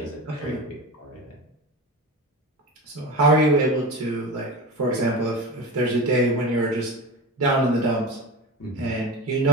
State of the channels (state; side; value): normal; both; correlation 0.27